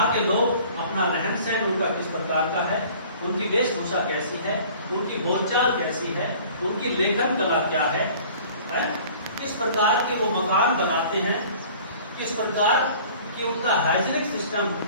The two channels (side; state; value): both; inverted; correlation -0.48